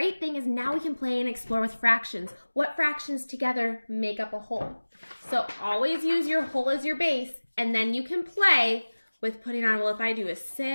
thing is now we can play and explore with fractions. What fractions together make up a whole? So always use your whole as your base, and then you can play with putting on, well, if I do a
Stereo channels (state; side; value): inverted; both; correlation -1.00